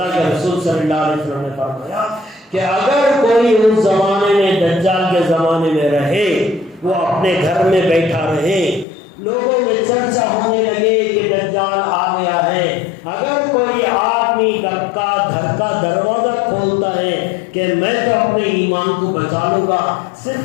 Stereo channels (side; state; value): right; drops out; at 8.8 s